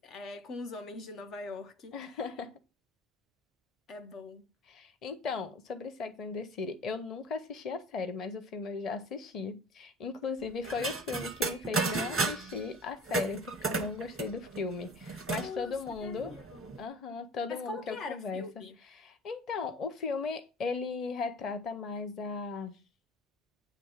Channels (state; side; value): normal; both; correlation 0.43